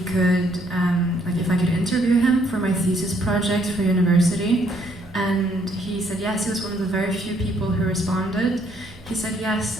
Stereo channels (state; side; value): noise; right; hum, 23 dB below the sound